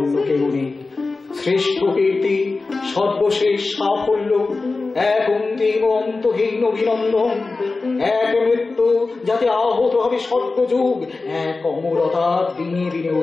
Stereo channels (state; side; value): quieter; right; 3.8 dB